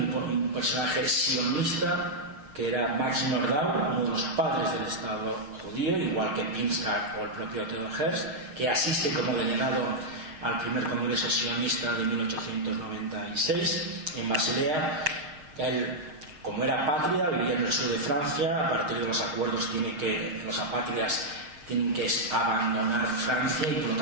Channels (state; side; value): late; left; 6.5 ms